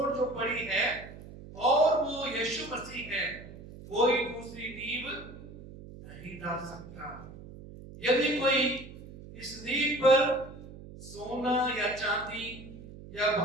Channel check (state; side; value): noise; right; hum, 16 dB below the sound